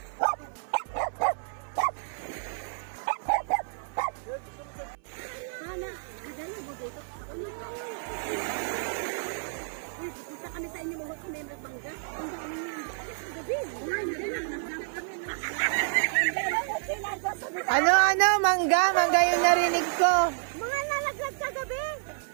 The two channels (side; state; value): left; silent; 58 dB below the other